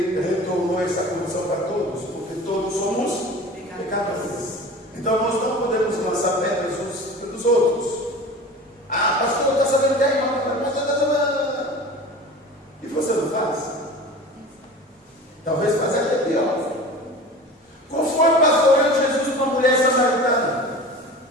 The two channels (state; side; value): normal; both; correlation 0.37